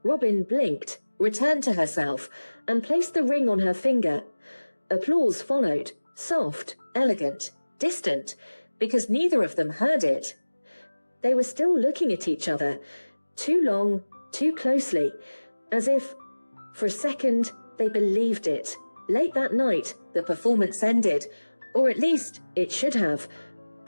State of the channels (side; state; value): both; inverted; correlation -1.00